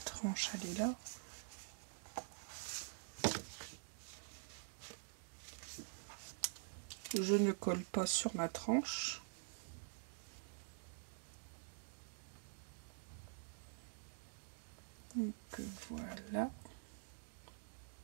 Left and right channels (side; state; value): left; silent; digital silence